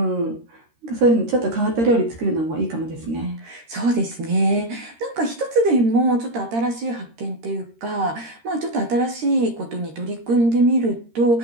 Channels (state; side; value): late; left; 13 ms